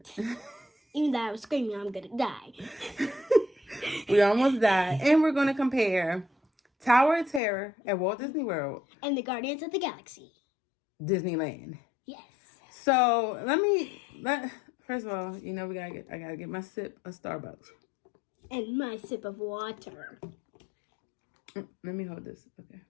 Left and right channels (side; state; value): right; drops out; at 7.4 s